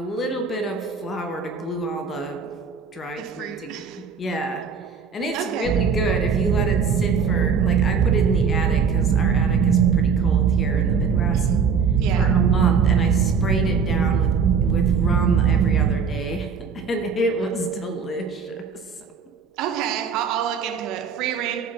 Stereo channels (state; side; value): quieter; left; 6.0 dB